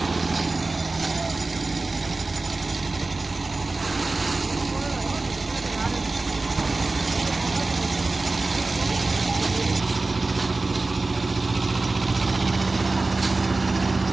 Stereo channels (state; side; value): quieter; left; 3.4 dB